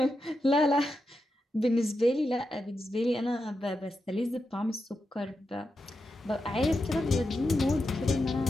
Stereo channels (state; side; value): normal; both; correlation 0.88